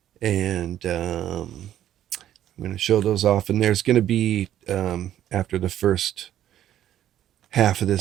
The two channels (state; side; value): quieter; left; 11.6 dB